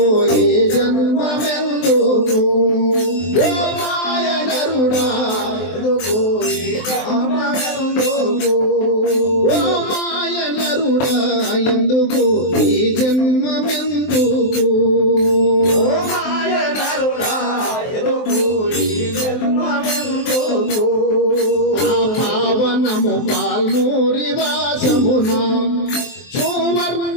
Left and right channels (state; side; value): late; right; 23 ms